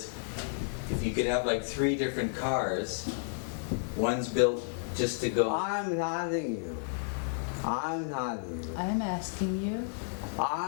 if you could have like 3 different cars, one's built just to go. I'm asking you. I'm asking you. I'm asking you.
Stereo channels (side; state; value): right; silent; 57 dB below the other